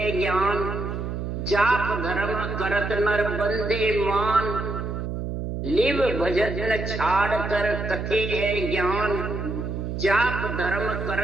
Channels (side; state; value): right; noise; hum, 4 dB below the sound